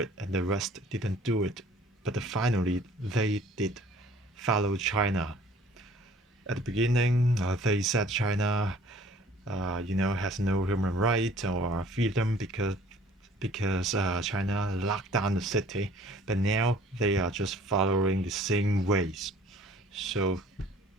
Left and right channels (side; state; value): both; normal; correlation 0.53